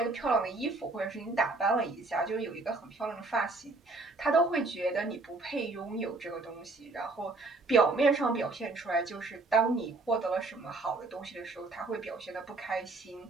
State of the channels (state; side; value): quieter; left; 3.3 dB